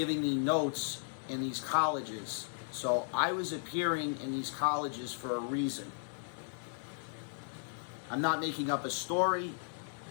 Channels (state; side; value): silent; right; digital silence